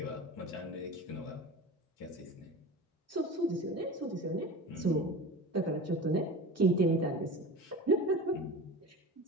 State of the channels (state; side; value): normal; both; correlation 0.32